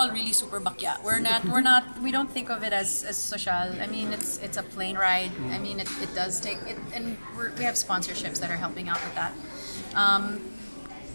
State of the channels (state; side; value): inverted; both; correlation -1.00